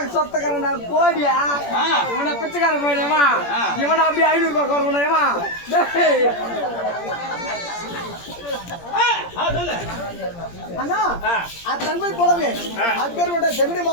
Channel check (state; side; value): late; right; 17 ms